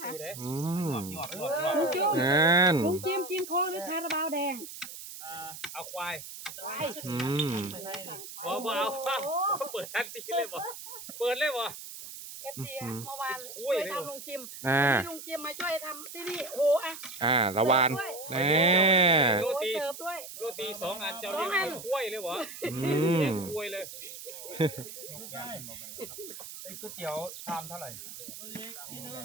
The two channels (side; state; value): right; noise; hiss, 12 dB below the sound